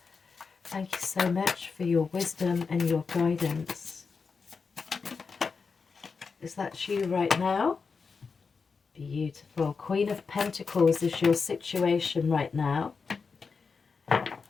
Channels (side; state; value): right; quieter; 5.1 dB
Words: Thank you so much for your wisdom and your guidance. Is that you right now? Beautiful. Queen of Pentacles is your situation right now.